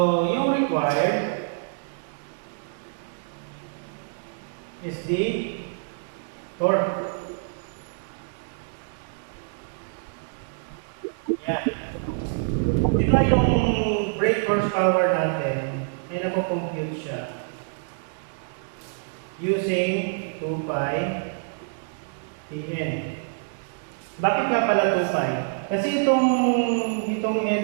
yung required is the torque. Yan. Di ba yung brake horsepower natin, ay napo-compute siya using 2 pi Tn. Bakit nga pala 2 pi? Kasi itong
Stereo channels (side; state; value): left; silent; digital silence